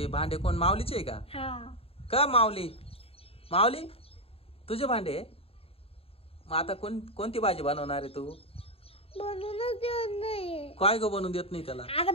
भांडे कोण, माऊलीचे आहे का? हा. का माऊली? माऊली तुझे भांडे? मग आता कोणती भाजी बनवणार आहे तू? बनवूनच देत नाही. काय ग बनवून देत नाही त्याला? आता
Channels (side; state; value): right; late; 0.28 ms